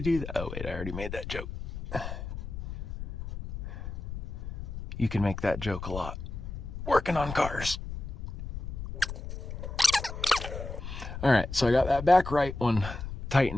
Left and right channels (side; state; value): left; noise; rumble, 8 dB below the sound